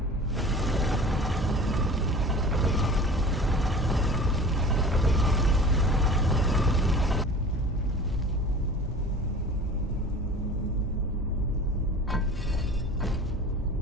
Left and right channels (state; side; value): normal; both; correlation 0.40